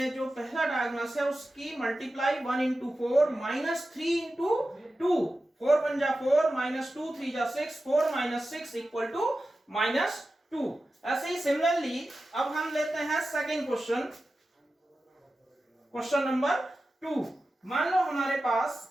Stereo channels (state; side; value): normal; both; correlation 0.93